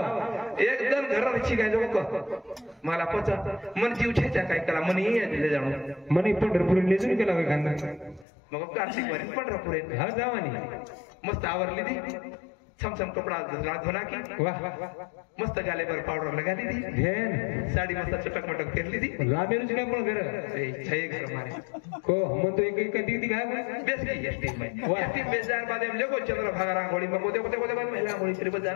एकदम घराची काय लोक मला पचा मन जीव छेच्या काय कला मन ले जाणो मनी पंढरपूर ले जाऊन केला काय खांदा मग कार्तिक वारी पंढरपूर हा जावानी मस्त आवरली दी छमछम कपड़ा धोना की वाह मस्त गाले पर पाउडर लगा दी धेन साड़ी मस्त चटक मटक फेर ली दी लामेरुच काय पण घर ए छे घर मारे को हम तो एक दीदी काय बेस की एसटी में एसटी बेजार बाद में लेको चंद्र भागा रांगोळी में कोते कोते बाद महिला गोळी तरी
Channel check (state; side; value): drops out; right; at 8.2 s